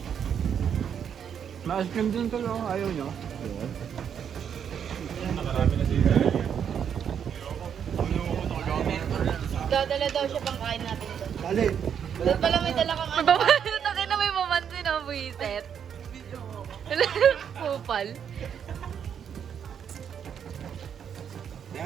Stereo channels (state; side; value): quieter; left; 8.1 dB